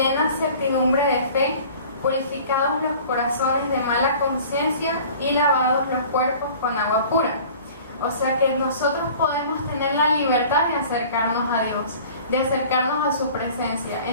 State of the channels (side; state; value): both; inverted; correlation -0.46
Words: certidumbre de fe, purificados los corazones de mala conciencia y lavados los cuerpos con agua pura. O sea que nosotros podemos tener la libertad de acercarnos a Dios, de acercarnos a su presencia.